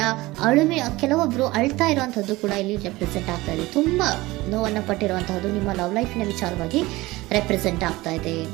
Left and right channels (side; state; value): left; quieter; 19.9 dB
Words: ಕೆಲವೊಬ್ರು ಅಳ್ತಾ ಇರುವಂತಹದ್ದು ಕೂಡ ಇಲ್ಲಿ ರೆಪ್ರೆಸೆಂಟ್ ಆಗ್ತಾ ಇದೆ. ತುಂಬಾ ನೋವನ್ನ ಪಟ್ಟಿರುವಂತಹದ್ದು ನಿಮ್ಮ ಲವ್ ಲೈಫ್ ನ ವಿಚಾರವಾಗಿ ರೆಪ್ರೆಸೆಂಟ್ ಆಗ್ತಾ ಇದೆ.